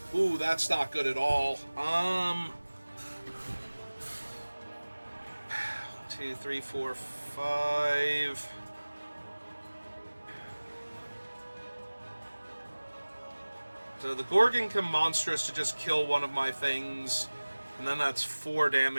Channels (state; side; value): inverted; both; correlation -1.00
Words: Ooh, that's not good at all. 2, 3, 4, 5. So the Gorgon can Monstrous to just kill one of my things, and then that's 4